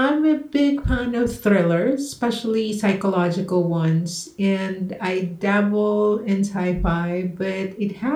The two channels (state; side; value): identical; both; correlation 1.00